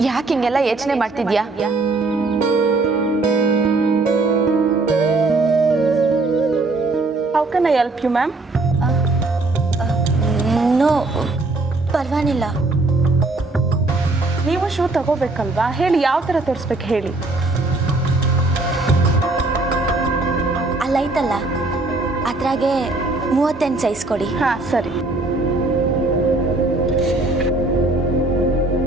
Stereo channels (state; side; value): quieter; left; 3.1 dB